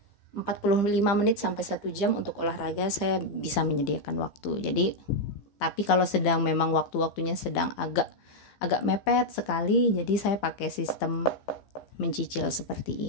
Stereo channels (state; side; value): late; right; 15 ms